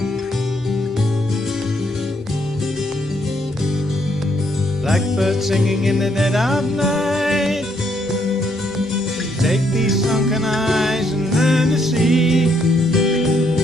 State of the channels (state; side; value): normal; both; correlation 0.72